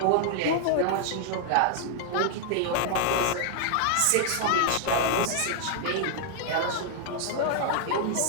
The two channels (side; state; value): both; different; correlation -0.01